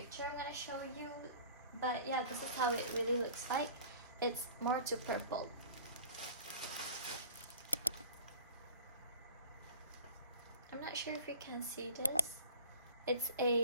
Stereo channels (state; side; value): inverted; both; correlation -0.44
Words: I'm gonna show you, but yeah, this is how it really looks like. It's more to purple. I'm not sure if you can see this. It's